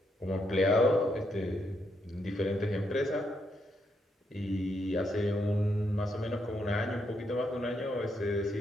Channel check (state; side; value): normal; both; correlation 0.78